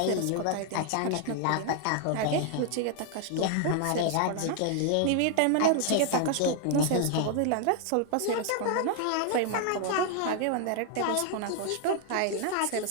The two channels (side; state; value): both; different; correlation 0.00